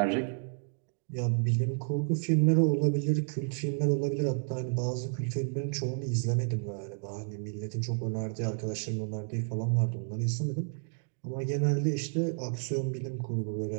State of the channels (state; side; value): silent; left; 57 dB below the other